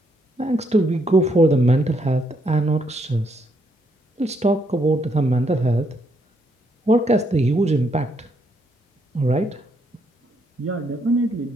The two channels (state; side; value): normal; both; correlation 0.74